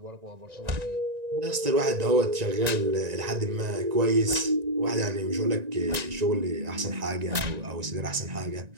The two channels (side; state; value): left; late; 1.9 ms